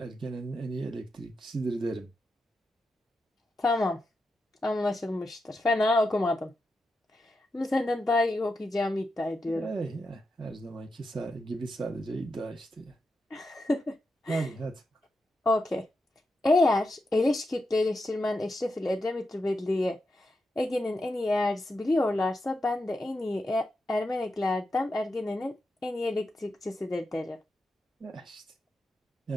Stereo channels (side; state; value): both; normal; correlation 0.87